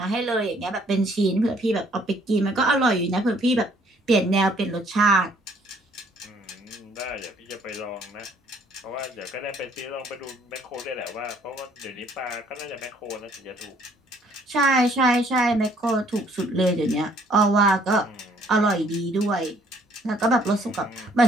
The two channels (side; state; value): both; normal; correlation 0.62